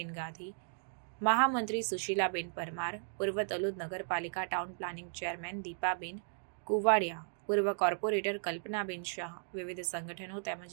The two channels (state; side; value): silent; left; digital silence